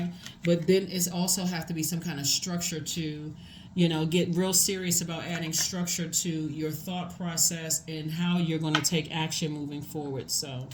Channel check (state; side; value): identical; both; correlation 1.00